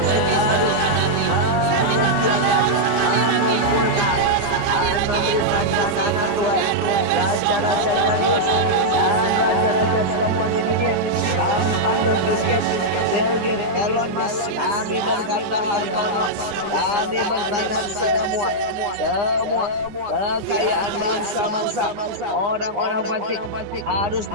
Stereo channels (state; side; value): late; left; 9.8 ms